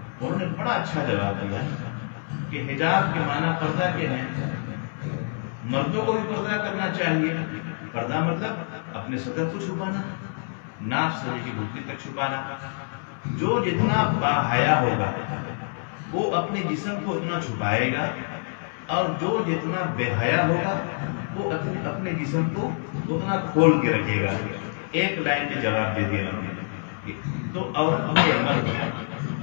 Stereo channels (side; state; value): right; silent; digital silence